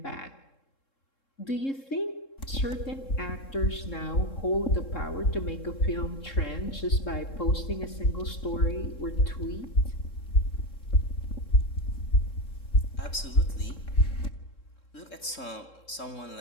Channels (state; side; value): late; right; 3.7 ms